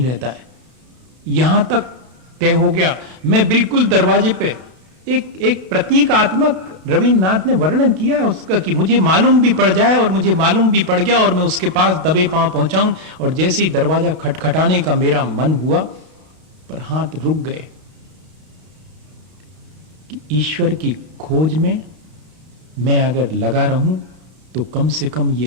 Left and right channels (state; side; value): late; left; 32 ms